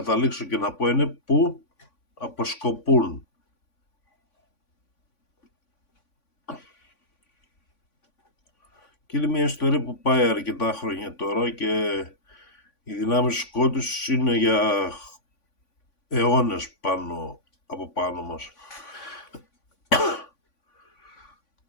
και να πω είναι που αποσκοπούν. Και είναι μια ιστορία που πάει αρκετά χρόνια τώρα και οι δυνάμεις του σκότους είναι για αιώνες από πάνω μας.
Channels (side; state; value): right; late; 3.5 ms